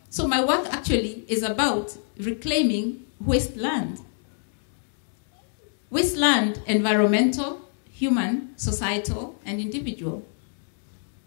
So my work actually is about reclaiming wasteland. Wasteland, environmental, human, societal, and individual.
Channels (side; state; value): right; silent; digital silence